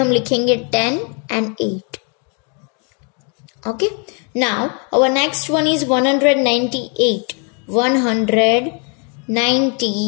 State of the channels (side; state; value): right; quieter; 37.4 dB